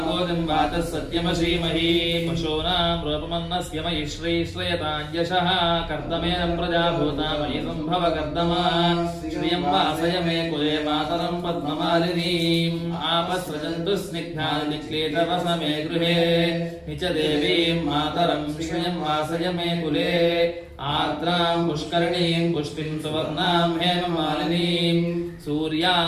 वाचः सत्यमशीमहि पशूनां रूपमन्नस्य मयि श्रीश्रयताञ्जशः कर्दमेन प्रजाभूता मयि सम्भव कर्दमा श्रियं वासय मे कुले मातरं पद्ममालिनीम् आपस्रजन्तु स्निग्धानिक्लेतवस मे गृहे निच देवीं मातरं श्रियं वासय मे कुले आर्द्रां पुष्करणीं पुष्टिं सुवर्णां हेममालिनीं सूर्यां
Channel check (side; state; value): both; identical; correlation 1.00